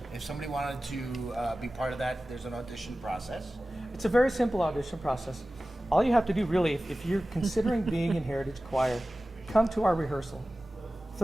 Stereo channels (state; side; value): normal; both; correlation 0.96